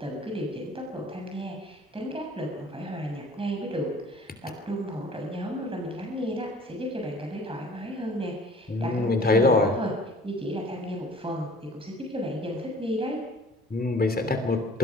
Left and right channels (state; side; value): normal; both; correlation 0.50